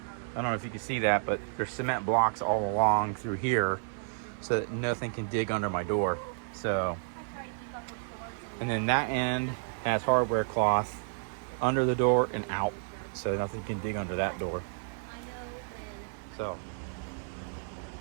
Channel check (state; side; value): silent; left; digital silence